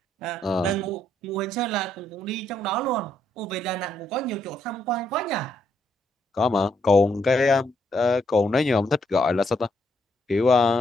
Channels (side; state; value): both; normal; correlation 0.75